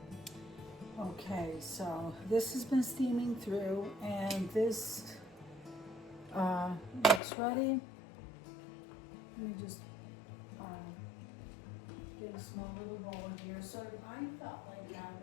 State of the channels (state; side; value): drops out; right; at 7.2 s